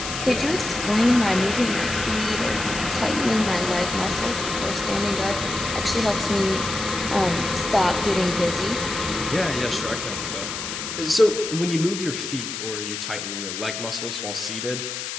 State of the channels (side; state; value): left; noise; hiss, 6 dB below the sound